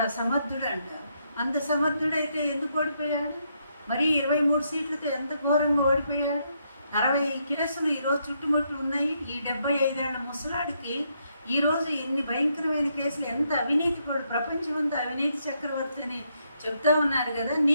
సమర్థుడు అంట. అంత సమర్థుడైతే ఎందుకు ఓడిపోయాడు? మరి 23 సీట్లతో ఎంత ఘోరంగా ఓడిపోయాడు. 60 కేసులు ఈరోజు చుట్టుముట్లు ఉన్నాయి. ఈ 75 ఏళ్ల ముసలాడికి ఈరోజు ఎన్ని భయంకరమైన కేసులు, ఎంత అవినీతి పడు, ప్రపంచమంతా అవినీతి చక్రవర్తి అని చెప్తా ఉన్నారు కదా.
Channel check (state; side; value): inverted; both; correlation -0.76